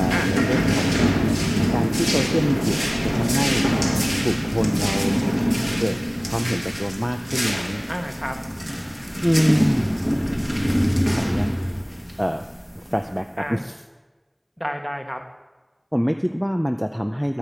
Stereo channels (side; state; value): both; identical; correlation 1.00